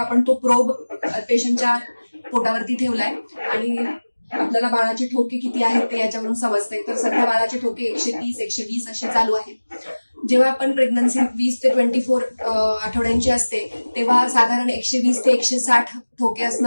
तो प्रोब पेशंटच्या पोटावरती ठेवलाय आणि आपल्याला बाळाचे ठोके किती आहेत ते याच्यावरून समजतंय. तर सध्या बाळाचे ठोके 130, 120 असे चालू आहेत. जेव्हा आपण प्रेग्नन्सी 20 ते 24 आठवड्यांची असते तेव्हा साधारण 120 ते 160 ठोके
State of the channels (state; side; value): inverted; both; correlation -1.00